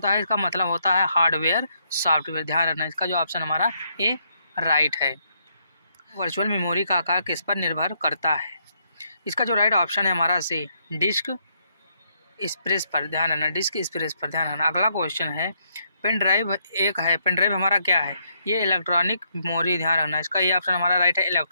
है? इसका मतलब होता है हार्डवेयर, सॉफ्टवेयर। ध्यान रखना, इसका जो ऑप्शन हमारा ए राइट है। वर्चुअल मेमोरी का आकार किस पर निर्भर करता है? इसका जो राइट ऑप्शन है हमारा सी, डिस्क स्पेस पर। ध्यान रखना, डिस्क स्पेस पर। ध्यान रखना। अगला क्वेश्चन है पेन ड्राइव एक है, पेन ड्राइव हमारा क्या है? ये इलेक्ट्रॉनिक मेमोरी। ध्यान रखना, इसका ये ऑप्शन हमारा राइट है,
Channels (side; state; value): both; inverted; correlation -0.73